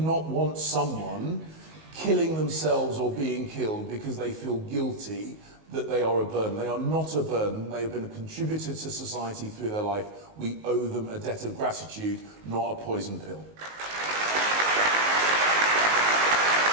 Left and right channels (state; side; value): late; left; 19 ms